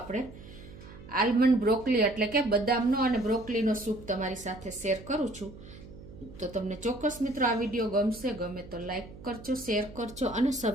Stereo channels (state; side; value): noise; right; hum, 17 dB below the sound